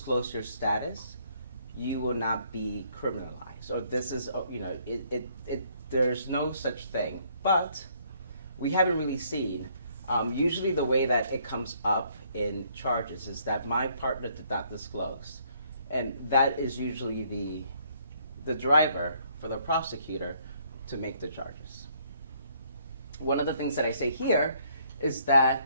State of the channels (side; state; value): both; inverted; correlation -0.66